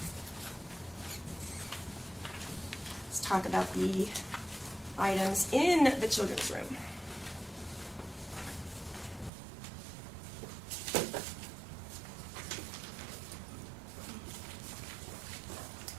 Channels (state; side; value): drops out; left; at 9.3 s